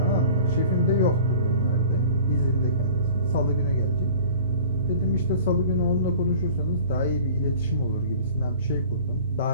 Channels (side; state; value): both; inverted; correlation -0.44